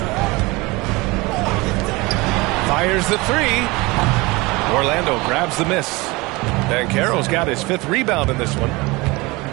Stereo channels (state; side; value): quieter; left; 23.5 dB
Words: Fires the 3. Orlando grabs the miss. Banchero's got his 5th rebound in this one.